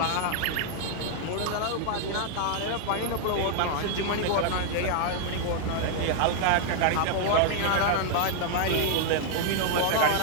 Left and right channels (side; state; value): both; different; correlation 0.00